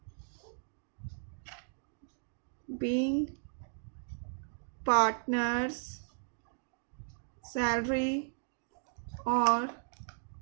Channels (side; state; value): left; silent; digital silence